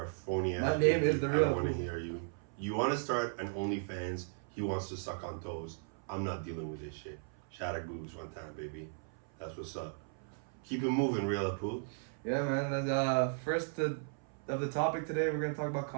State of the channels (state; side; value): silent; left; 54 dB below the other